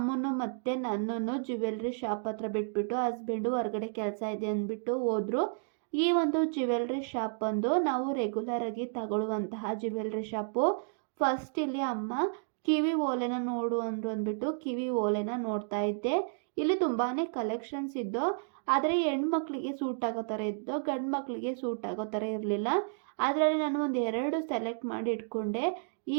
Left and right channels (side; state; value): left; silent; digital silence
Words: ಮತ್ತೆ ನನ್ನನ್ನು ಜ್ಯುವೆಲ್ರಿ ಶಾಪ್ ಹತ್ರ ಬಿಟ್ಬಿಟ್ಟು ಹಸ್ಬೆಂಡು ಹೊರಗಡೆ ಕೆಲಸ ಇದೆ ಅಂದ್ಬಿಟ್ಟು ಹೋದ್ರು. ಈ ಒಂದು ಜ್ಯುವೆಲ್ರಿ ಶಾಪ್ ಬಂದು ನಾವು ರೆಗ್ಯುಲರ್ ಆಗಿ ತಗೊಳ್ಳುವಂತಹ ಜ್ಯುವೆಲ್ರಿ ಶಾಪು. ಫಸ್ಟ್ ಇಲ್ಲಿ ಅಮ್ಮ ಕಿವಿ ಓಲೆನ ನೋಡು ಅಂದ್ರು ಅಂದ್ಬಿಟ್ಟು ಕಿವಿ ಓಲೆನ ನೋಡ್ತಾ ಇದ್ದೆ. ಇಲ್ಲಿ ತುಂಬಾನೇ ಕಲೆಕ್ಷನ್ಸ್ ಇದ್ದು, ಆದರೆ ಹೆಣ್ಮಕ್ಳಿಗೆ ಸೂಟ್ ಆಗೋ ಥರ ಇದ್ದು, ಗಂಡು ಮಕ್ಕಳಿಗೆ ಸೂಟ್ ಆಗೋ ಥರ ಇರಲಿಲ್ಲ. ಅದರಲ್ಲಿ ನಾನು ಒಂದು 2 ಸೆಲೆಕ್ಟ್ ಮಾಡಿ ಇಟ್ಕೊಂಡೆ. ಈ